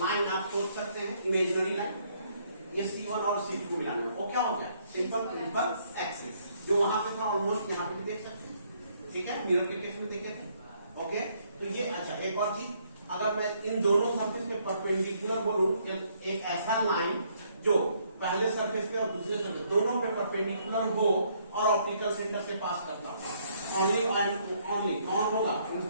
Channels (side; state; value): both; inverted; correlation -0.69